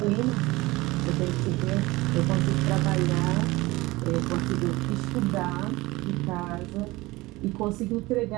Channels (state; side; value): quieter; left; 20.7 dB